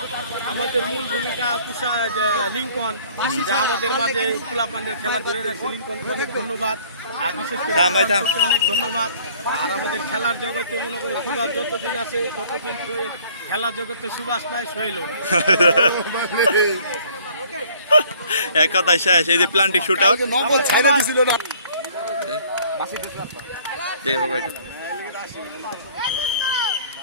আমাদের মূল ভূমিকা পুষা লিঙ্কন, যা আমাদের মাঝে পোলাপানের খেলা ধরে রাখছে। লিঙ্কনকে অনেক ধন্যবাদ, আর বিশেষ করে অনেক ধন্যবাদ। আর আমাদের খেলার জগতে মনে করো সুভাষ যতদিন আছে ততদিন সোহেল, খেলার জগতে সুভাষ নাই সোহেলও না। এক কথায় শেষ। এই যে প্লান্টিক শুট আউট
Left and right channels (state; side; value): inverted; both; correlation -0.55